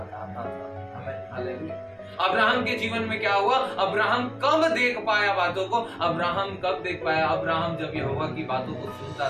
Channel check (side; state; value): both; identical; correlation 1.00